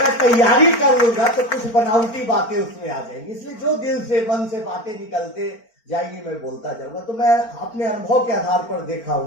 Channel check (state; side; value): late; right; 4.4 ms